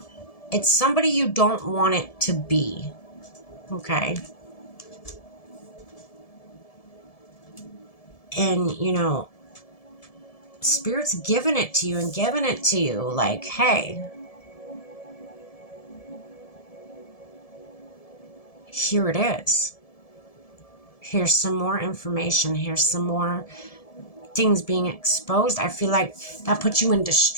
it's somebody you don't want it to be, okay? And, Spirit's giving it to you and giving it to you like, hey, here it is. Here's some more information. Here's some more things being exposed. I feel like that puts you in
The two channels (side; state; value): right; late; 1.7 ms